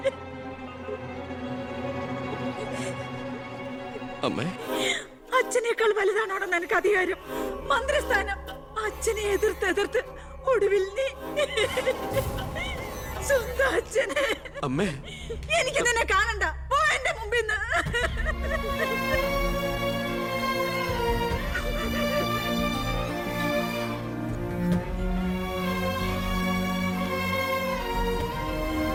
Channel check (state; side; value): identical; both; correlation 1.00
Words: അമ്മേ, അച്ഛനേക്കാൾ വലുതാണോടെന്ന് എനിക്ക് അധികാരം, മന്ത്രിസ്ഥാനം. അച്ഛനെ എതിർത്ത് ഒടുവിൽ നീ സ്വന്തം അച്ഛനെ. അമ്മേ, എനിക്ക് നിന്നെ കാണണ്ട, പോ എന്റെ മുമ്പിൽ നിന്ന്.